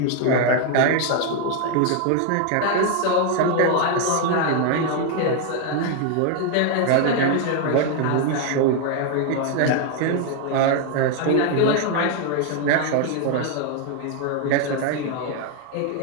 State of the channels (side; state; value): both; different; correlation 0.01